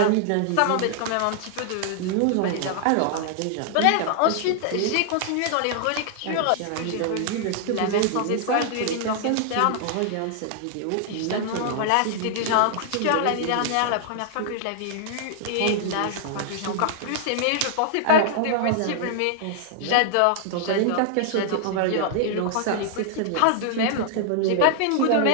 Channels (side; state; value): both; different; correlation -0.01